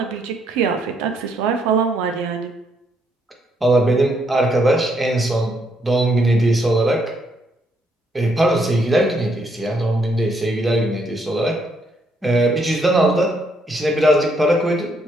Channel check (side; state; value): both; normal; correlation 0.73